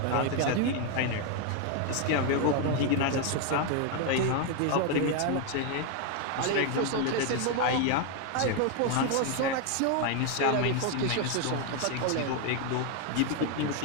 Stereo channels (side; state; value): both; different; correlation 0.01